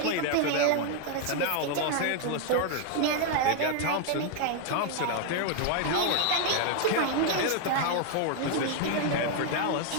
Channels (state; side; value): different; both; correlation 0.00